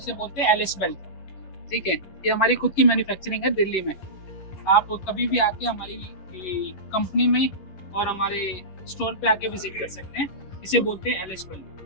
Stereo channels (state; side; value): late; right; 11 ms